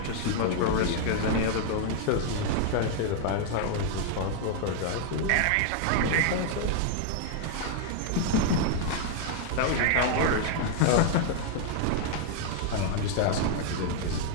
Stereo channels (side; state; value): both; different; correlation 0.00